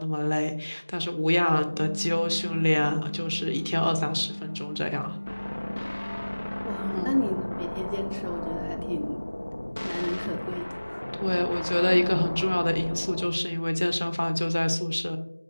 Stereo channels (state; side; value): inverted; both; correlation -1.00